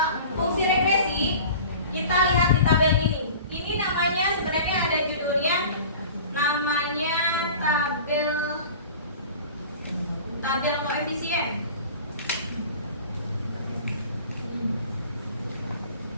fungsi regresi, kita lihat di tabel ini. Ini namanya sebenarnya ada judulnya, namanya tabel koefisien.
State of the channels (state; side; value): inverted; both; correlation -0.41